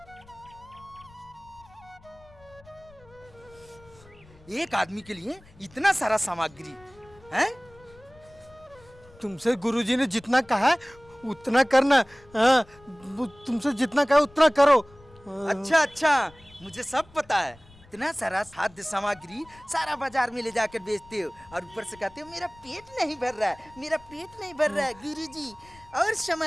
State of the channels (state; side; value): noise; left; rumble, 25 dB below the sound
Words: एक आदमी के लिए इतना सारा सामग्री है? तुमसे गुरुजी ने जितना कहा है उतना करना। हाँ, तुमसे जितना कहा उतना करो। अच्छा अच्छा, मुझे सब पता है। इतना सारा खाद्य सामग्री सारा बाजार में ले जाकर बेचते हो और ऊपर से कहते हो मेरा पेट नहीं भर रहा है, मेरा पेट नहीं भर रहा है। गुरुजी और